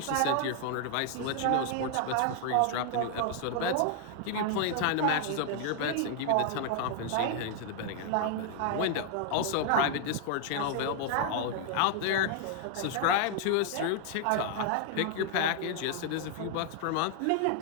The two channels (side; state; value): both; different; correlation 0.00